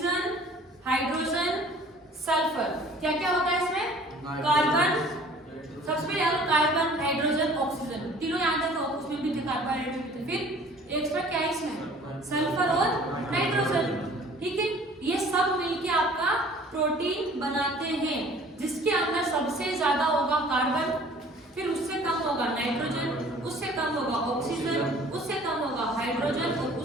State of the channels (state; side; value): normal; both; correlation 0.50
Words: hydrogen, sulphur, क्या क्या होता है इसमें? कार्बन, सबसे पहले याद कार्बन, हाइड्रोजन, ऑक्सीजन, तीनों याद रखो, उसमें भी थे कार्बोहाइड्रेट। फिर एक्स्ट्रा क्या है इसमें? सल्फर और नाइट्रोजन, ठीक है। ये सब मिलके आपका प्रोटीन बनाते हैं, जिसके अंदर सबसे ज्यादा होगा कार्बन, फिर उससे कम होगा नाइट्रोजन, उससे कम होगा ऑक्सीजन, उससे कम होगा हाइड्रोजन और